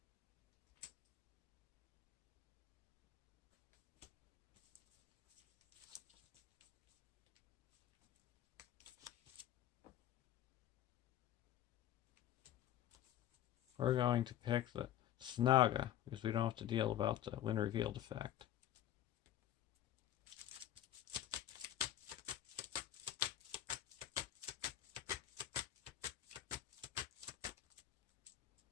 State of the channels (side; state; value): right; quieter; 11.9 dB